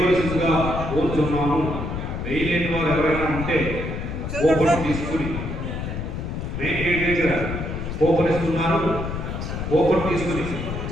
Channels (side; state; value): left; noise; rumble, 5 dB below the sound